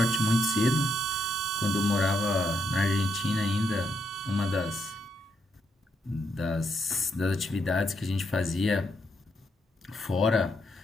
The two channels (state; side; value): normal; both; correlation 0.79